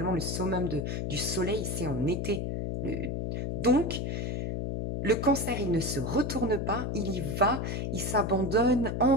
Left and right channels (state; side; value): noise; left; hum, 2 dB below the sound